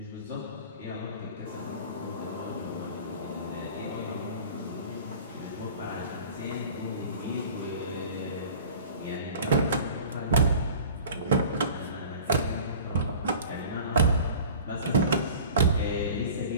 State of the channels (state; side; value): inverted; both; correlation -0.42